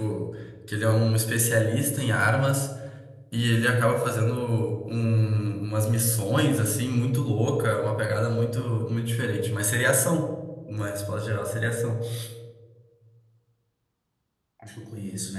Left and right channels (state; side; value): identical; both; correlation 1.00